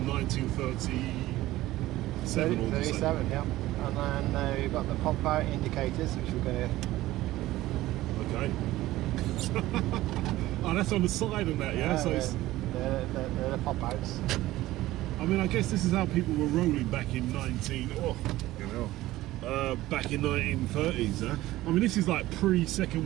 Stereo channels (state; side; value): quieter; left; 16.4 dB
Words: 1937. 37. Yep. And then we've got the pop-out indicators, which we're going to. Okay. Oh, that's on the side of that, yeah. So they're the pop-outs. I mean, I guess this is how people were rolling back in back in 1930s, huh? I mean, this is like